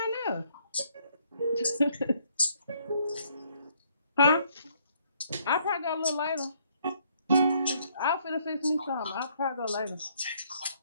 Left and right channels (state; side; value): inverted; both; correlation -0.68